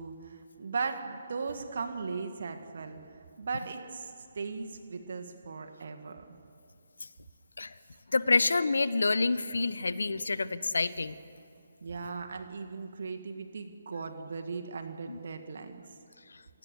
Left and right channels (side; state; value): both; inverted; correlation -0.91